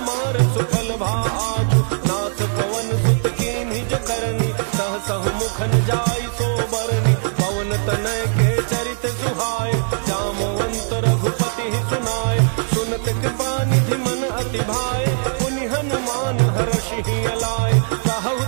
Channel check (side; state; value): left; silent; 60 dB below the other